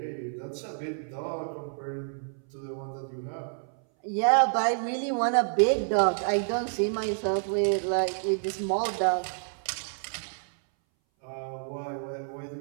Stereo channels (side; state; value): left; silent; 59 dB below the other